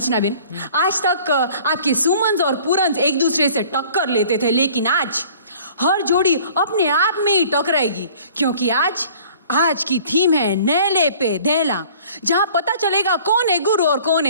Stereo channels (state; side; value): inverted; both; correlation -0.50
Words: बेन, आज तक आपके सुमन और पूरन एक दूसरे से टक्कर लेते थे, लेकिन आज हर जोड़ी अपने आप में ही टकराएगी, क्योंकि आज की थीम है नेले पे देला, जहां पता चलेगा कौन है गुरु और कौन